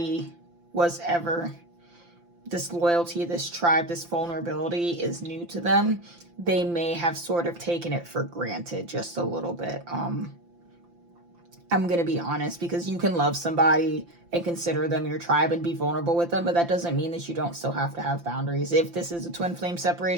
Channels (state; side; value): late; left; 5.8 ms